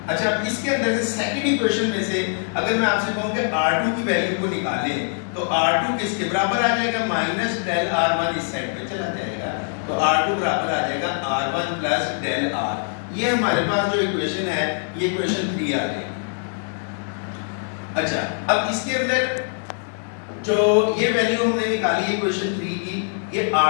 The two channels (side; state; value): right; silent; 64 dB below the other